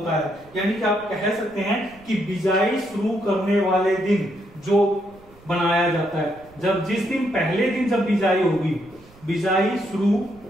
है। यानी कि आप कह सकते हैं कि बिजाई शुरू करने वाले दिन जो बनाया जाता है, जब जिस दिन पहले दिन जब बिजाई होगी, बिजाई शुरू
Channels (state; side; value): noise; right; rumble, 26 dB below the sound